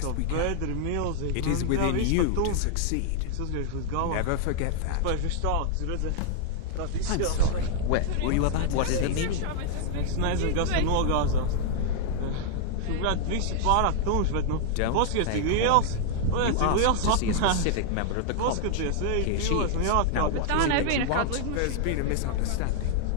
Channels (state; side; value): different; both; correlation 0.00